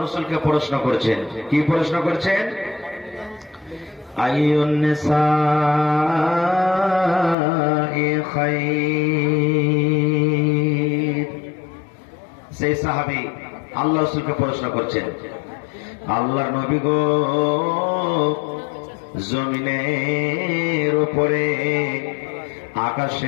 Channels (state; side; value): drops out; right; at 7.4 s